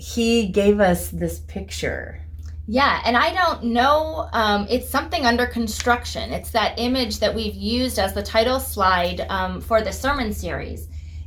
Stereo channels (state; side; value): identical; both; correlation 1.00